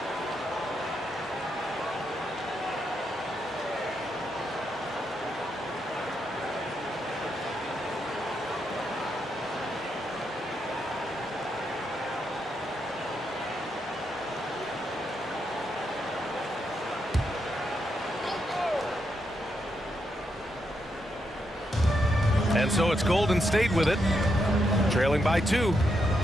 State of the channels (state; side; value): normal; both; correlation 0.81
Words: And so it's Golden State with it, trailing by 2.